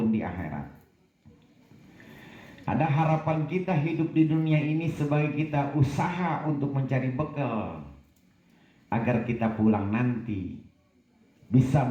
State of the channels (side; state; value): both; identical; correlation 1.00